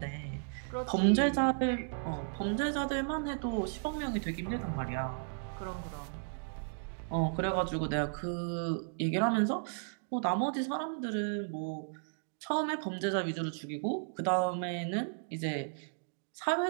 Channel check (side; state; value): left; silent; digital silence